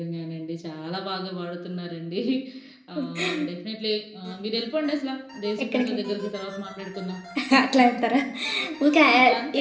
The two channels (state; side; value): identical; both; correlation 1.00